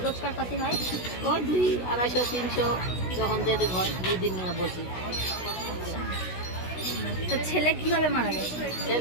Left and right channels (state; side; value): late; right; 16 ms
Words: রোজগার পাতি হয়? ওই 200-250-300 যখন যেতে হয়, 2 দিন বসি। তো ছেলে কিভাবে মারা গেছে?